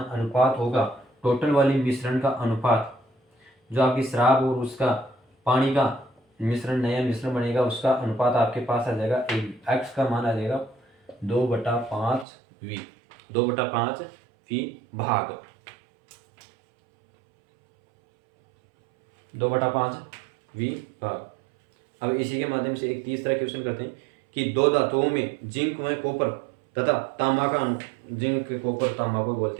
अनुपात होगा, टोटल वाली मिश्रण का अनुपात, जो आपकी शराब और उसका पानी का मिश्रण, नया मिश्रण बनेगा, उसका अनुपात आपके पास आ जाएगा, x का मान आ जाएगा 2/5v, 2/5v भाग 2/5v भाग। अब इसी के माध्यम से एक तीसरा क्वेश्चन करते हैं कि दो धातुओं में जिंक व कॉपर तथा तांबा का, जिंक कॉपर तांबा को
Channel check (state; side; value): drops out; left; at 12.2 s